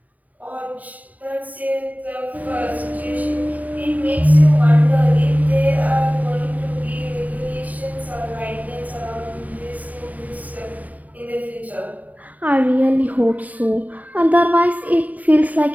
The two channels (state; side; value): late; left; 0.074 ms